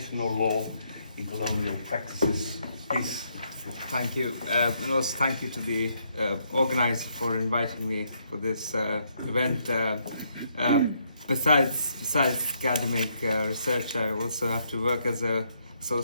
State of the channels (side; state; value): both; inverted; correlation -0.74